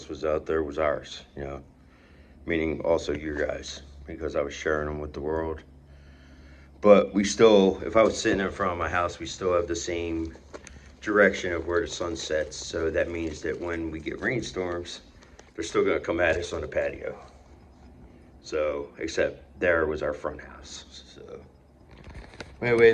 was out there was ours, you know, meaning also you guys, because I was sharing them with the world. But we still, if I was sitting in front of my house, we still have the same direction of where the sun sets. So that means that when we get rainstorms, they're still gonna come at us on the patio. So, except there was our front house. So,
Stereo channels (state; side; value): identical; both; correlation 1.00